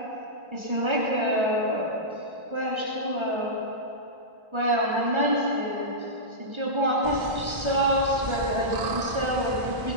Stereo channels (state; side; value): late; left; 1.3 ms